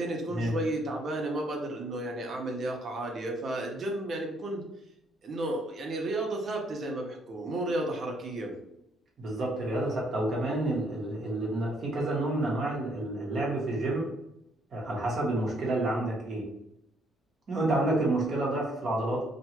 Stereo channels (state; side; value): normal; both; correlation 0.69